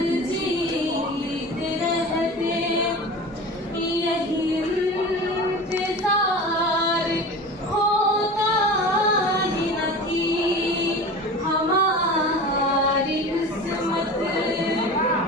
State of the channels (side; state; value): both; normal; correlation 0.34